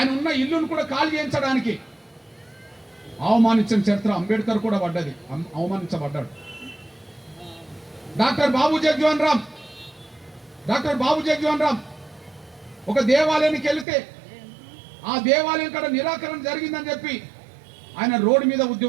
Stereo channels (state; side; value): drops out; left; at 13.9 s